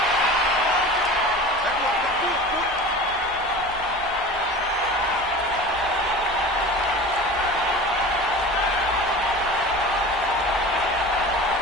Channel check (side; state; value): both; normal; correlation 0.36